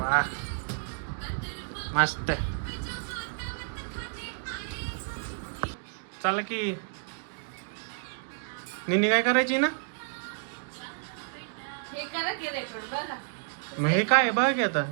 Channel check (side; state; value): left; silent; digital silence